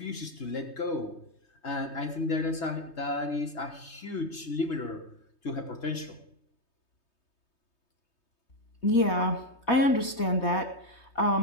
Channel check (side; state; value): right; late; 3.2 ms